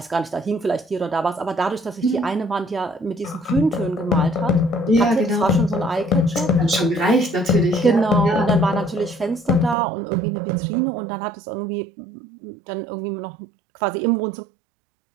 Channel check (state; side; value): drops out; left; at 9.8 s